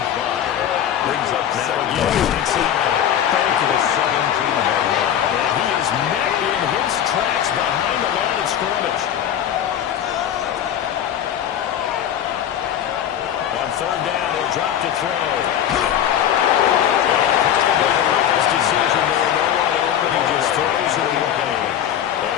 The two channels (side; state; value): right; quieter; 10.0 dB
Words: 5. Brings up Now second again, inside. to the 17-yard line. And he is met in his tracks behind the line of scrimmage. On third down, he'll He'll drop to throw. Probably the wise decision there. No one open. He just throws it away.